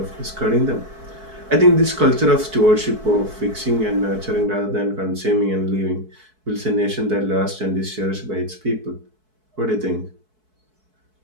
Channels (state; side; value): late; left; 4.6 ms